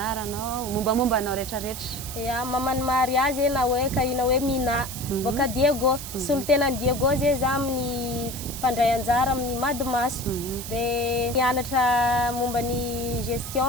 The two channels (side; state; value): right; noise; hiss, 9 dB below the sound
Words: mombamomba anao rehetrarehetra? Ya mamany mariage na hoe kahina hoe Mina boka Diego solotena Diego zay za amin'ny mpandray anjara amin'ny Madimaso dia nianatra momba ny